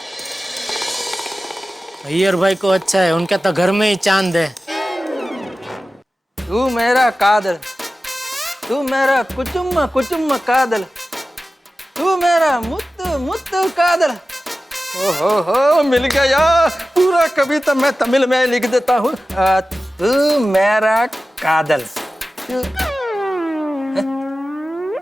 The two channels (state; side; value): normal; both; correlation 0.95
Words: अय्यर भाई को अच्छा है, उनके तो घर में ही चांद है। तू मेरा कादल, तू मेरा कुचुम्मा कुचुम्मा कादल, तू मेरा मुत्तु मुत्तु कादल। ओहो, मिल गया। पूरा कविता मैं तमिल में लिख देता हूँ। तू मेरा कादल।